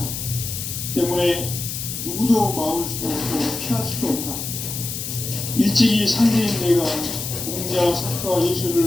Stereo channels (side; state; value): left; noise; hiss, 5 dB below the sound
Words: 때문에 누구도 막을 수 없고 피할 수도 없다. 일찍이 상제인 내가 공자, 석가,